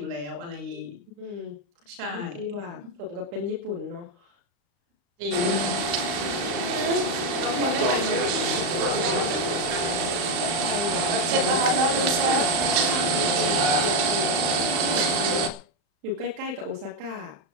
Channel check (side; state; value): left; late; 35 ms